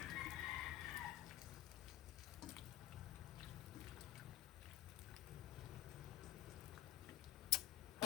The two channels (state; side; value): quieter; right; 13.9 dB